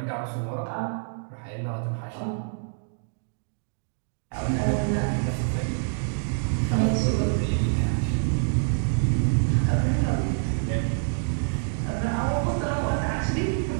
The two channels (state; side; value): silent; left; digital silence